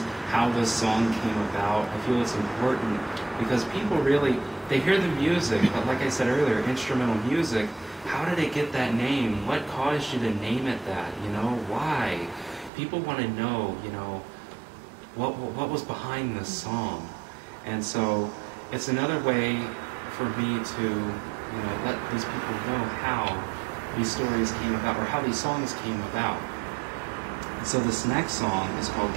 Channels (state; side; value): drops out; left; at 12.7 s